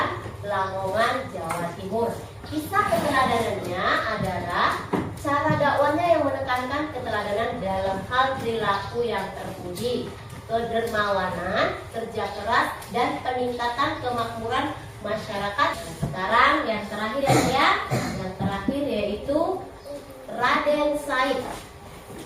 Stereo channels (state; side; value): identical; both; correlation 1.00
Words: Lamongan, Jawa Timur. Kisah keteladanannya adalah cara dakwahnya yang menekankan kedermawanan, kerja keras, dan peningkatan kemakmuran masyarakat. Sekarang yang terakhir ya, yang terakhir yaitu Raden Said,